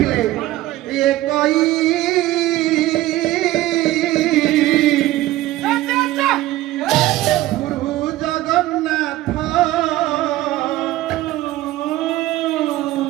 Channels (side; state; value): left; quieter; 16.0 dB